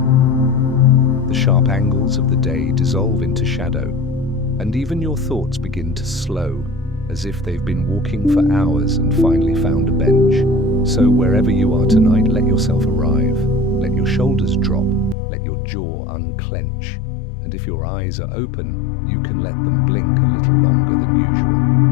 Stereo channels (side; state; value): right; drops out; at 15.2 s